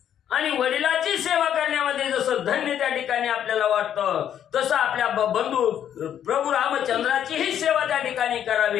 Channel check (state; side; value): quieter; right; 9.8 dB